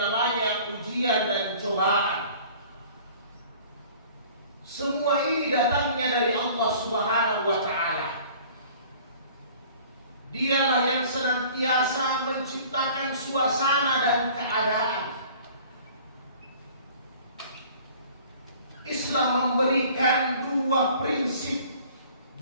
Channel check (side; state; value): both; inverted; correlation -0.49